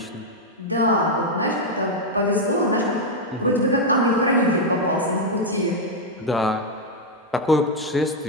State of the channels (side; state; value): both; normal; correlation 0.00